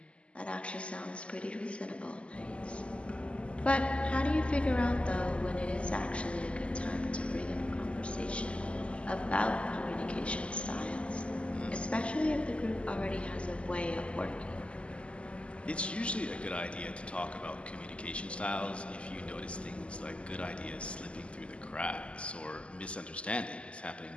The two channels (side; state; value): right; late; 0.056 ms